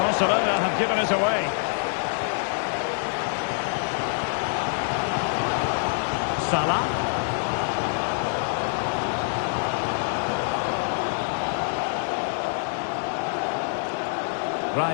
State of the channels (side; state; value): right; silent; digital silence